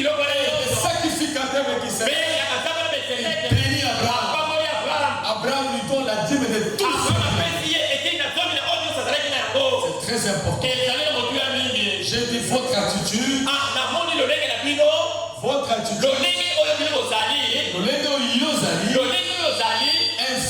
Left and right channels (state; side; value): identical; both; correlation 1.00